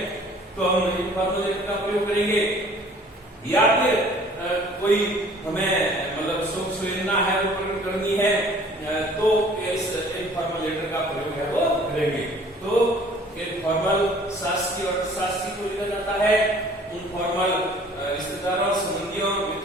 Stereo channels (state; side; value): normal; both; correlation 0.52